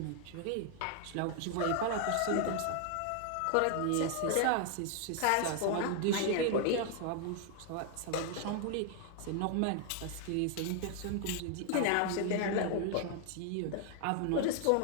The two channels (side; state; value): both; different; correlation 0.00